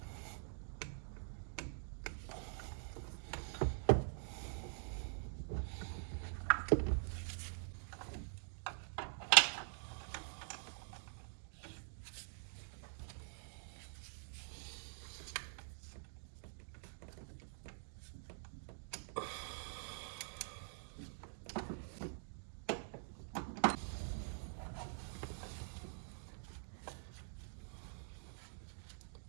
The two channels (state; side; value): silent; left; digital silence